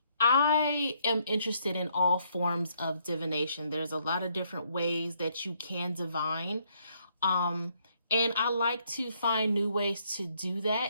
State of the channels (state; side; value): inverted; both; correlation -0.71